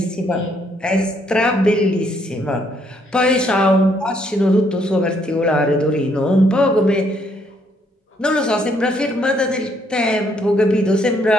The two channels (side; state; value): both; normal; correlation 0.70